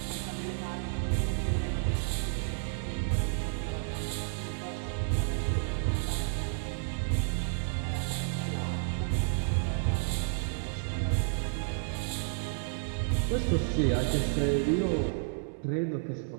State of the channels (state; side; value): silent; left; 57 dB below the other